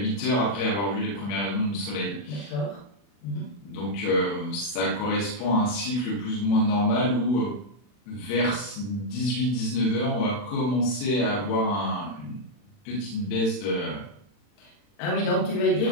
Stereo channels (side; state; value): right; late; 40 ms